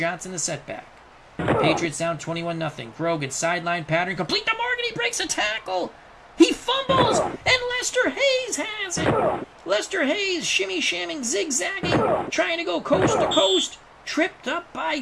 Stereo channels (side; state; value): both; identical; correlation 1.00